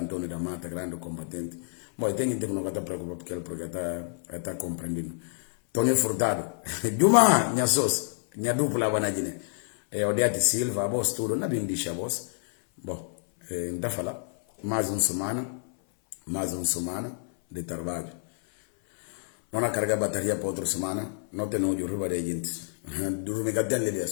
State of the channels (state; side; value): silent; right; 58 dB below the other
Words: da Mata, grande combatente. Bom, tem gente que não está preocupado porque ele está compreendendo. Tony Furtado, Juma, minha sócia, minha dupla, Banadine. Odiati Silva, a voz tudo, não bem deixa a voz. Bom, ainda falar, mais uma semana de trabalho. Não há carga bateria para outra semana, não tem onde riba de gente. Dorme que tem ali,